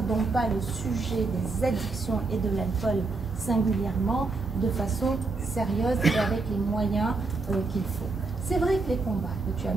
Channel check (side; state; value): left; quieter; 3.8 dB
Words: pas le sujet des addictions et de l'alcool singulièrement de façon sérieuse et avec les moyens qu'il faut. C'est vrai que les combats que tu as